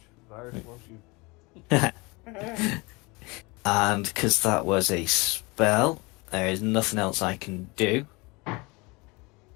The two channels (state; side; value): quieter; right; 26.0 dB